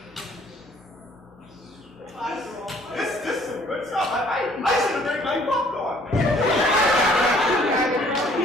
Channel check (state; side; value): normal; both; correlation 0.59